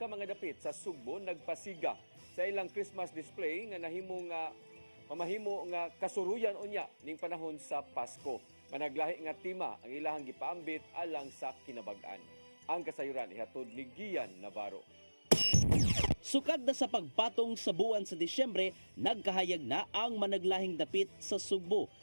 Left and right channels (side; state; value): both; inverted; correlation -1.00